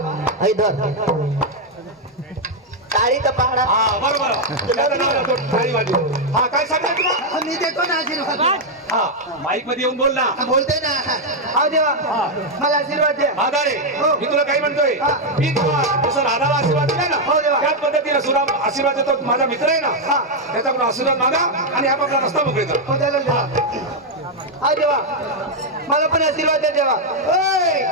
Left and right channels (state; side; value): normal; both; correlation 0.00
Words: ऐ धर टाळी तर पाहणार. हा बरोबर. त्याचं नाव राहतो थाळी वाजवी. हा काय सांगता तुला? मी देतो ना आशीर्वाद. हा माईक मध्ये येऊन बोल ना. बोलते ना. हा देवा मला आशीर्वाद द्या. आधारे मी तुला काही म्हणतोय, मी तुला जसं राधाला आशीर्वाद दिला ना हो देवा. त्याच पद्धतीने सुद्धा आशीर्वाद देतो. माझा मित्र आहे ना त्याच्याकडून आशीर्वाद मागा आणि आपापला रस्ता मोकळीचा. हो चालेल देवा. हा देवा मला पण आशीर्वाद द्या देवा. ओय